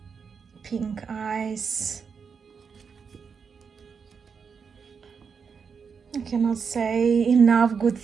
Pink eyes. cannot say enough good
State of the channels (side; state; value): left; quieter; 6.0 dB